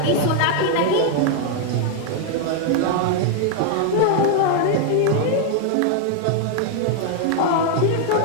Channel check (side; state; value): both; different; correlation 0.00